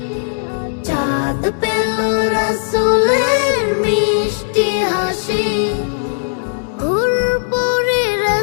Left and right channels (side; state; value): right; silent; digital silence